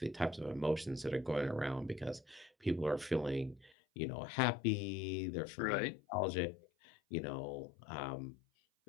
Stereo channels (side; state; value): right; drops out; at 3.8 s